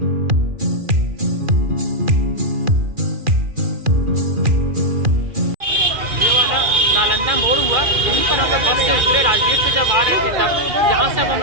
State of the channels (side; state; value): left; late; 2.4 ms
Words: नालंदा मोड़ हुआ, यहीं पर हम लोग बस से उतरे। राजगीर से जब आ रहे थे तब यहाँ से अब हम